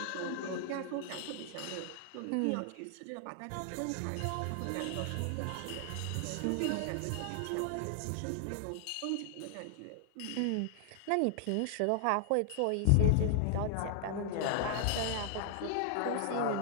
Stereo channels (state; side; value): different; both; correlation 0.00